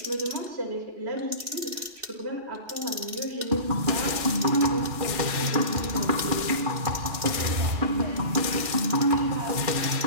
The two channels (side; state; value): left; late; 2.7 ms